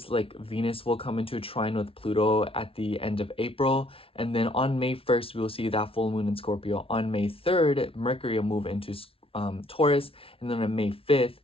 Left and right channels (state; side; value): late; right; 0.26 ms